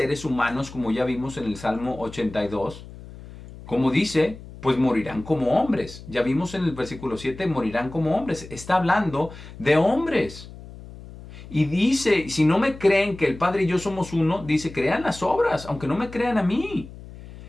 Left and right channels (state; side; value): noise; left; hum, 16 dB below the sound